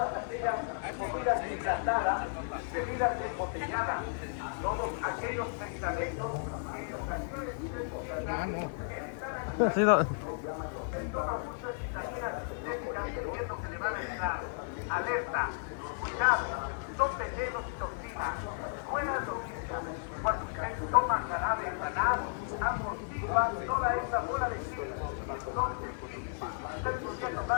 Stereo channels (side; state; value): right; silent; 55 dB below the other